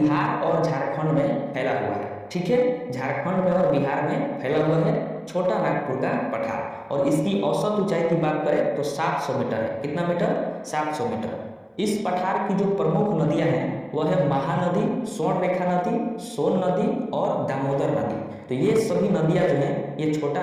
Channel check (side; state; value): both; identical; correlation 1.00